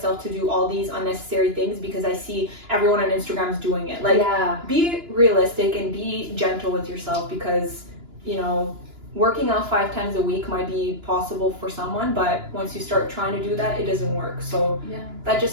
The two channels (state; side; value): late; left; 2.9 ms